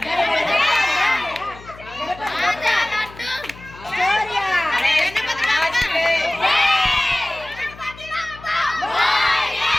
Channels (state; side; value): noise; left; hum, 19 dB below the sound